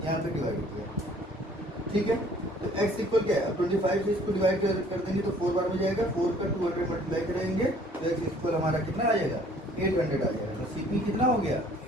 यहाँ पे डिवाइड हो गया, ठीक है। तो x इक्वल क्या है, 25 से इसको डिवाइड कर देंगे तो 4 बार में जाएगा, 4 का 200 मल्टीप्लाई करेंगे तो x इक्वल हमारा कितना आ जाएगा, 800 आ जाएगा। तो सीपी कितना हो गया,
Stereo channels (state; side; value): normal; both; correlation 0.56